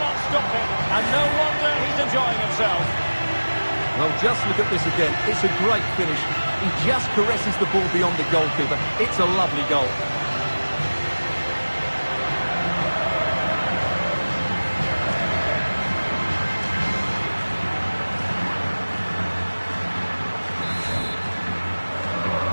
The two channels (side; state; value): both; inverted; correlation -1.00